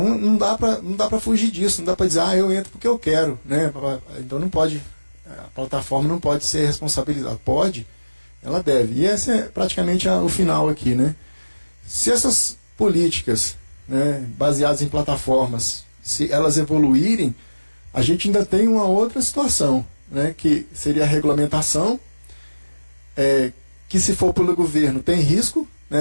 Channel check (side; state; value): both; inverted; correlation -1.00